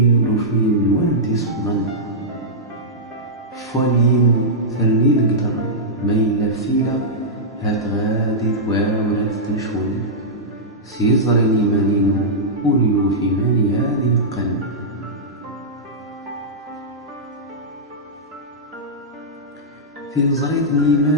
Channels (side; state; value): both; normal; correlation -0.11